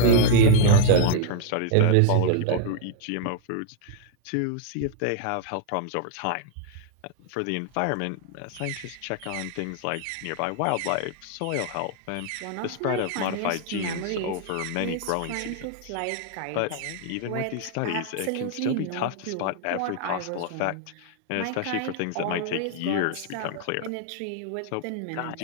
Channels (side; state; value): both; different; correlation 0.00